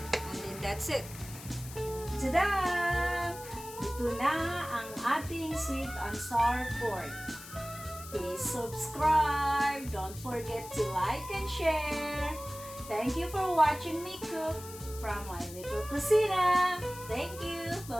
And then that's it. Tada! Ito na ang ating sweet and sour pork. Please subscribe. Don't forget to like and share. Thank you for watching me cook from My Little Cocina. Thank you.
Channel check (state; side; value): noise; left; hiss, 14 dB below the sound